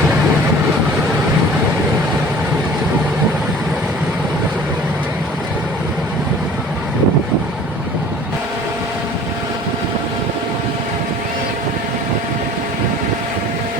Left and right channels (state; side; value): normal; both; correlation 0.47